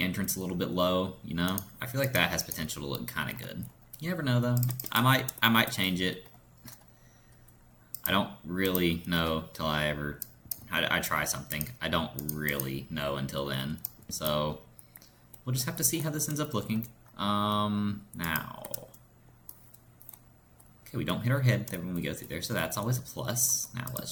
entrance a little bit low, you know? I feel like that has potential to look kind of good. You never know, though. I might change it. I don't really know till I try something. I don't really know until then. So, we'll just have to see how this ends up looking. Now... Okay, we don't hit our head when we go through there, so that's always a plus. Now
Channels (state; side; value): identical; both; correlation 1.00